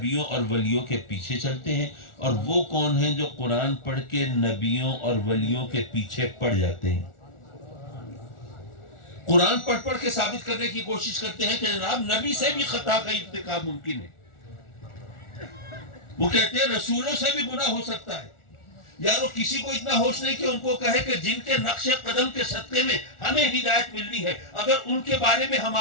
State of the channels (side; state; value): right; late; 1.4 ms